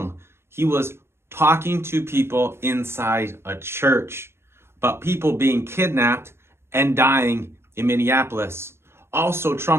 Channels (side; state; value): left; late; 0.12 ms